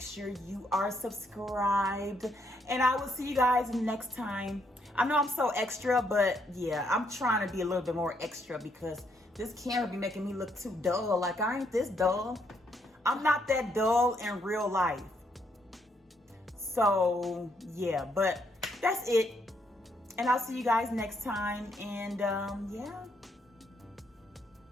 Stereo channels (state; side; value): normal; both; correlation 0.73